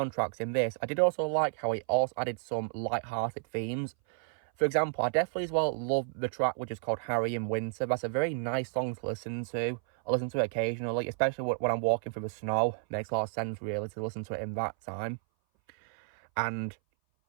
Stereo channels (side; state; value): left; silent; 57 dB below the other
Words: in this, I did also like how he also added some light-hearted themes. For example, I definitely as well love the track which is called Harry in Winter. That's a very nice song to listen to. I listen to it occasionally, especially when I'm walking through the snow. It makes a lot of sense, really, to listen to it in that time. And